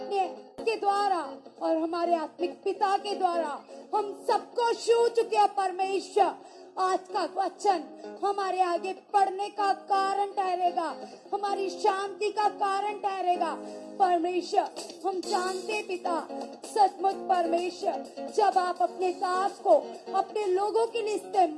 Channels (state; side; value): identical; both; correlation 1.00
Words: के द्वारा और हमारे आत्मिक पिता के द्वारा हम सबको छू चुके हैं परमेश्वर। आज का वचन हमारे आगे पढ़ने का कारण ठहरेगा, हमारी शांति का कारण ठहरेगा। परमेश्वर हम जानते पिता, सचमुच परमेश्वर, जब आप अपने दास को अपने लोगों के लिए